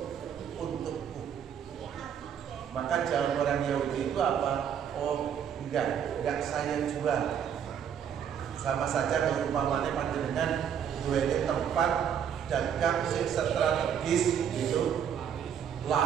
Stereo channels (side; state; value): left; quieter; 8.4 dB